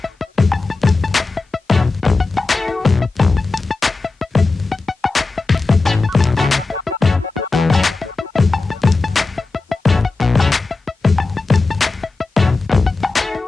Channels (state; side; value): quieter; right; 3.7 dB